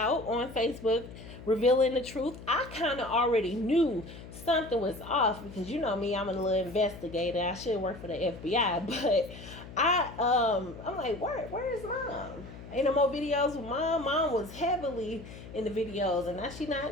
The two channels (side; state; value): left; noise; hum, 14 dB below the sound